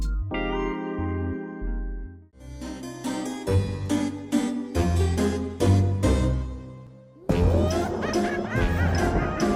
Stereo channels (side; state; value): both; identical; correlation 1.00